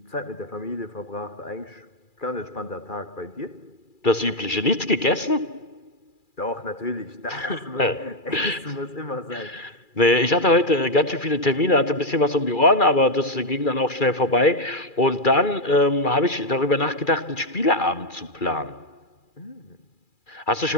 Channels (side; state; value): right; late; 2.4 ms